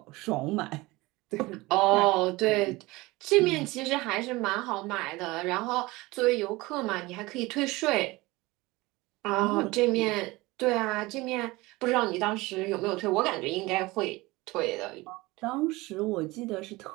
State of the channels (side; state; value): left; quieter; 21.4 dB